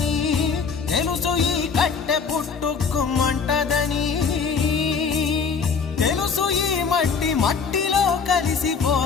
తెలుసు ఈ కట్టె పుట్టుకుమంటదని, తెలుసు ఈ మట్టి మట్టిలో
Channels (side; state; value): right; quieter; 5.6 dB